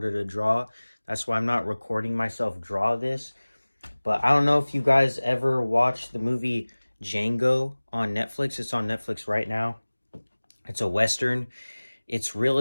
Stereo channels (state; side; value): inverted; both; correlation -1.00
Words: to draw. That's why I'm not recording myself draw this. But I don't know if you guys ever watched the movie Django on Netflix. It's on Netflix right now. It's a Western. It's